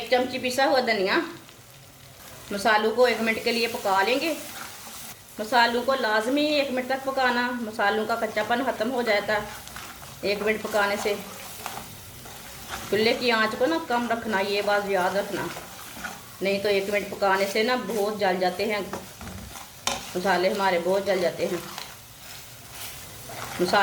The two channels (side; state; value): both; identical; correlation 1.00